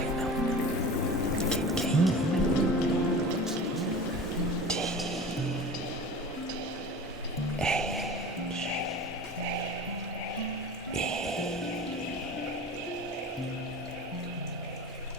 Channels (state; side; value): normal; both; correlation 0.35